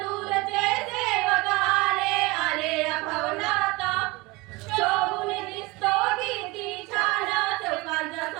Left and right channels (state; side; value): quieter; left; 23.5 dB